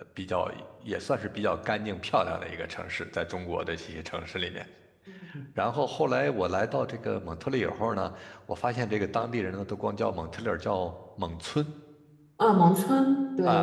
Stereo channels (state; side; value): identical; both; correlation 1.00